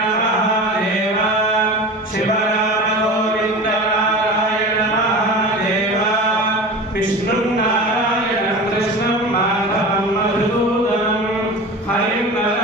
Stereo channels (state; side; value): normal; both; correlation 0.33